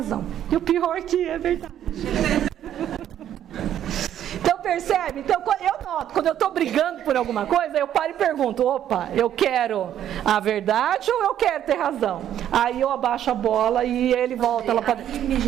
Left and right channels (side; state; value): left; quieter; 10.7 dB